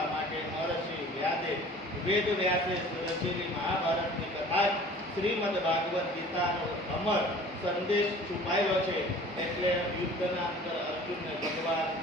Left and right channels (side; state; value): both; normal; correlation 0.46